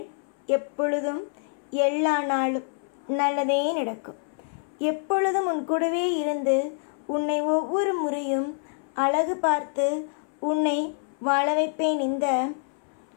எப்பொழுதும் எல்லா நாளும் நல்லதே நடக்கும். எப்பொழுதும் உன் கூடவே இருந்து உன்னை ஒவ்வொரு முறையும் அழகு பார்த்து உன்னை வாழ வைப்பேன். இந்த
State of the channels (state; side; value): silent; right; 60 dB below the other